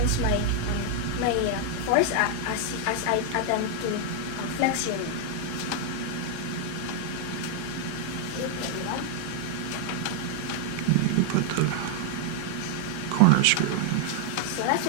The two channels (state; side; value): different; both; correlation 0.00